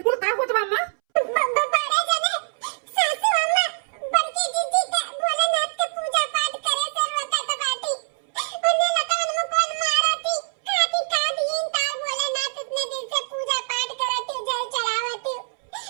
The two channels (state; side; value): silent; left; 63 dB below the other